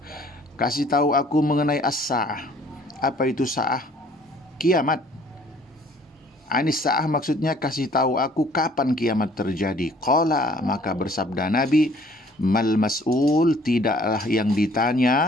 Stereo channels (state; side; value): normal; both; correlation 0.56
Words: kasih tahu aku mengenai as-sa'ah. Apa itu sa'ah? Kiamat. Anis sa'ah maksudnya kasih tahu aku kapan kiamat terjadi. Qala, maka bersabda Nabi, mal mas'ul, tidaklah yang